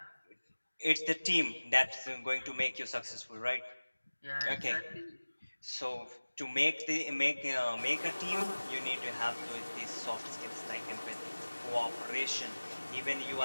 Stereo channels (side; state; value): both; inverted; correlation -1.00